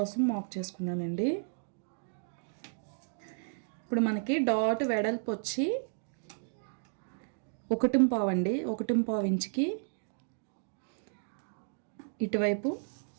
మార్క్ చేసుకున్నానండి. ఇప్పుడు మనకి డాట్ వెడల్పు వచ్చి 1.5 అండి. 1.5 ఇంచుకి ఇటువైపు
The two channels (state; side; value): silent; left; digital silence